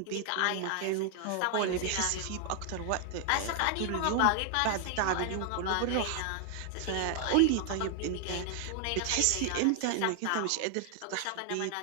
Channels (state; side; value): different; both; correlation 0.00